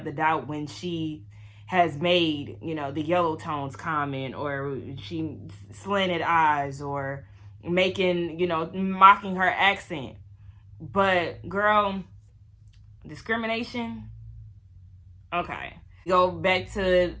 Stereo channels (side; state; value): both; identical; correlation 1.00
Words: the doubt when she has made, the yellow tones comment, or she slanted eyes, or making, mocking her accent. But, girl, discrimination, okay. Go back to